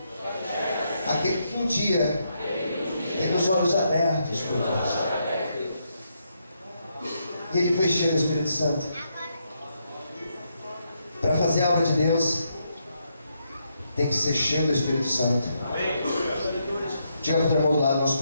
aquele que um dia teve os olhos abertos por Deus. E ele foi cheio do Espírito Santo. Para fazer a obra de Deus, tem que ser cheio do Espírito Santo. Diga para o teu irmão do lado, nós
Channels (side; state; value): both; inverted; correlation -0.79